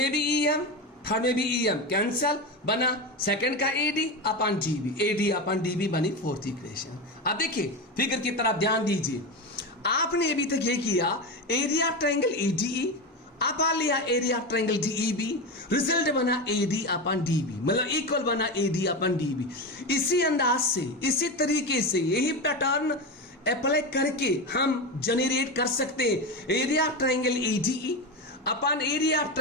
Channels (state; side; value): normal; both; correlation 0.19